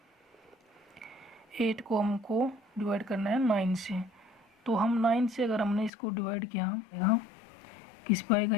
8 को हमको डिवाइड करना है 9 से। तो हम 9 से अगर हमने इसको डिवाइड किया, यहाँ किस पे आएगा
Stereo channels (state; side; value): drops out; right; at 5.9 s